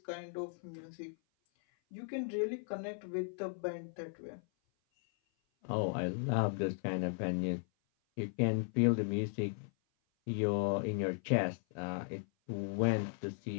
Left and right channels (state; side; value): silent; right; 53 dB below the other